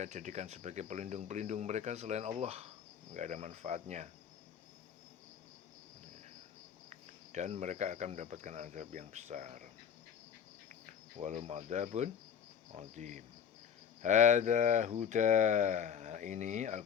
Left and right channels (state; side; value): quieter; right; 7.9 dB